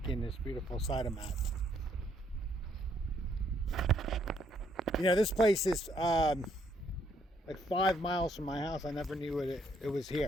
in this beautiful side of map. You know, this place is like 5 miles from my house. I never knew it was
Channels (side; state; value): both; normal; correlation 0.70